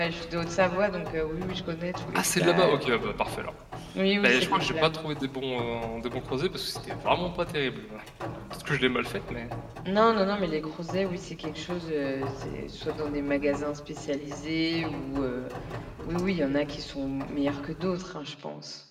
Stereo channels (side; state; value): both; identical; correlation 1.00